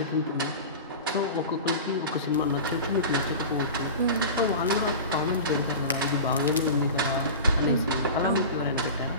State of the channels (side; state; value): both; inverted; correlation -0.31